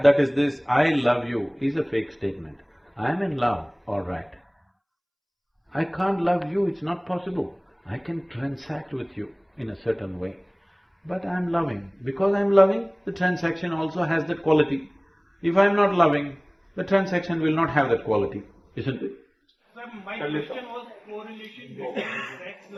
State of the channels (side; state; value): both; identical; correlation 1.00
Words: is this. I love you is a fake statement. I'm in love, all right. I can't love you, it's not possible. I can transact with you in a certain way, but I'm loving. Because I'm loving, the transaction also has that quality. If I'm not loving, the transaction will not have that quality, isn't it? Sir, my question was correlation between sex,